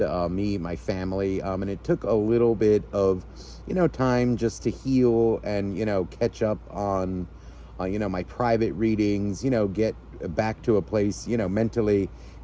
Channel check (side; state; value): both; identical; correlation 1.00